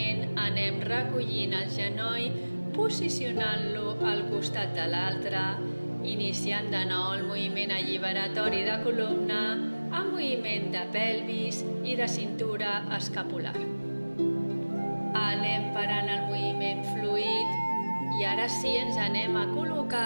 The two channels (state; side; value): inverted; both; correlation -1.00